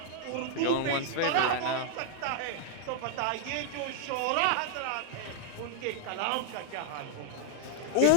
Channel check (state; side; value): different; both; correlation -0.01